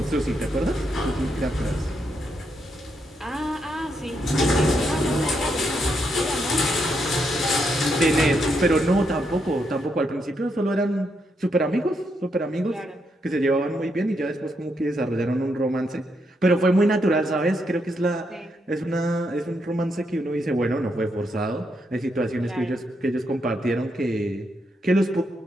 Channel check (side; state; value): both; normal; correlation 0.79